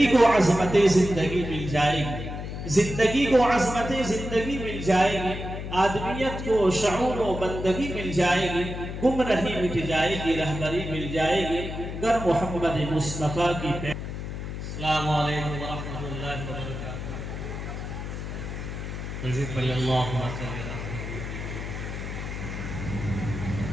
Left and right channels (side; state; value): left; noise; hum, 7 dB below the sound